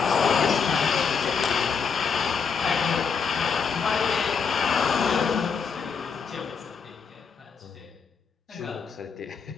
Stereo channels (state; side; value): quieter; right; 5.9 dB